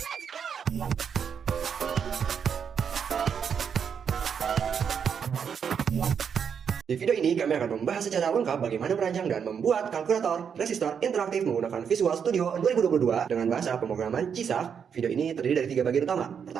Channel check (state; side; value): quieter; left; 7.2 dB